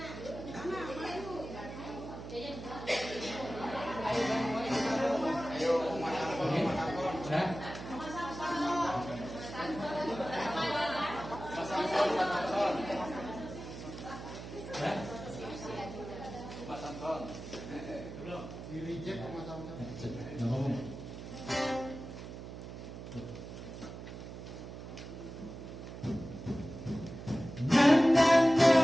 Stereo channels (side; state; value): right; noise; hum, 11 dB below the sound